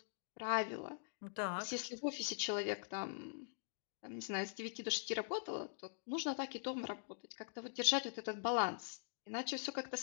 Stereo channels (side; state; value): right; silent; digital silence